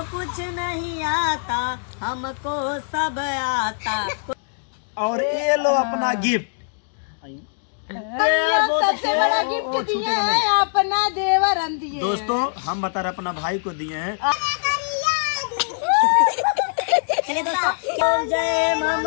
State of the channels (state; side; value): silent; right; digital silence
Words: कुछ नहीं आता, हमको सब आता। और ये लो अपना गिफ्ट। सबसे बड़ा गिफ्ट दिए हैं अपना देवर दिए। दोस्तों हम बता रहे अपना भाई को दिए हैं। चलिए दोस्तों, जय